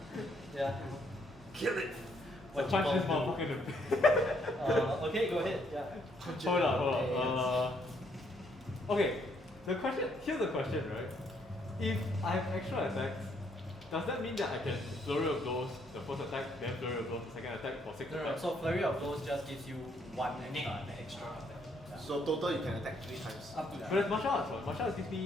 Yeah. Kill it. What Punch you this gonna motherfucker in the do? Okay, go ahead. Yeah. Hold on. Okay, here's the question, right? If I have extra attacks, does that mean that I can flurry of blows the first attack, then flurry of blows the second attack for 6 attacks? So flurry of blows just gives you one Extra. Yeah. So total you can attack 3 times. Up to that. But it's martial arts, right? Martial arts gives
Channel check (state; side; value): normal; both; correlation 0.70